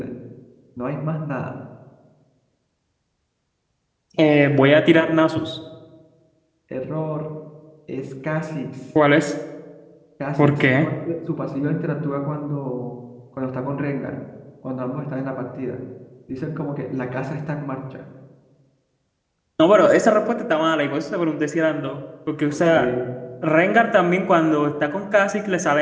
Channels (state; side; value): identical; both; correlation 1.00